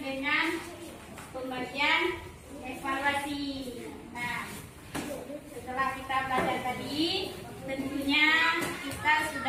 dengan pembagian evaluasi. Nah, setelah kita belajar tadi, tentunya kita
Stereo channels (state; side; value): identical; both; correlation 1.00